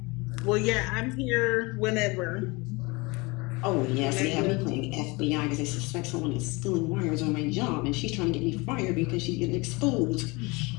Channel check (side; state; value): right; quieter; 25.7 dB